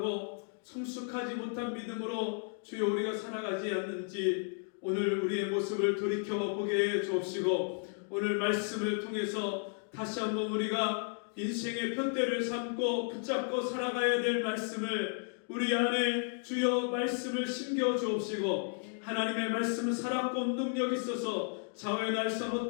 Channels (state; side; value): silent; right; 55 dB below the other